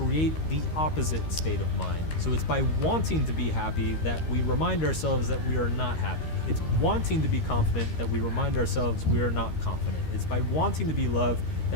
the opposite state of mind. So it's by wanting to be happy that we remind ourselves that we are not happy. It's wanting to be confident that we remind ourselves we are not confident. It's by wanting to be loved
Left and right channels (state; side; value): late; right; 13 ms